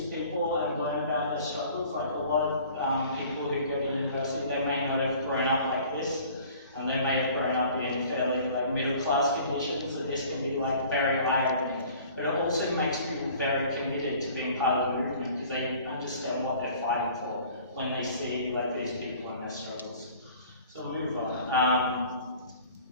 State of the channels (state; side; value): inverted; both; correlation -0.49